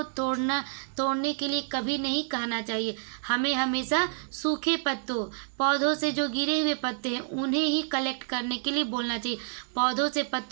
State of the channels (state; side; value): silent; left; 59 dB below the other